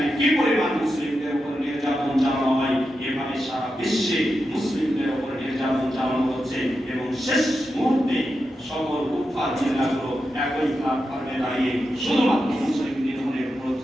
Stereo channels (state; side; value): normal; both; correlation 0.88